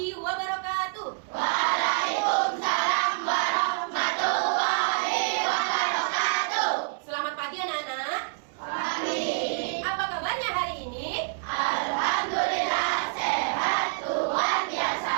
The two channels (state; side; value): silent; left; 60 dB below the other